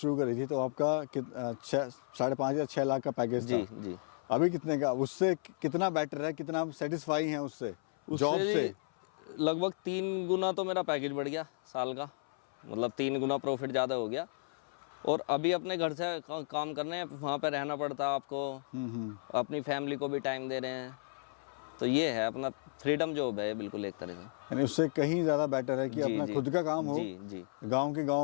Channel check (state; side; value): silent; right; 55 dB below the other